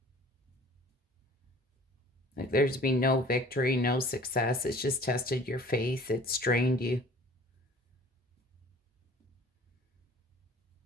Like there's been no victory, no success. It's just tested your faith. It's strained you.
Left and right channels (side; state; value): both; normal; correlation 0.48